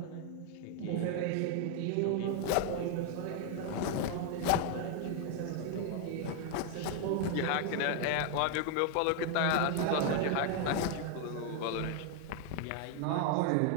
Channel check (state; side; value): different; both; correlation 0.00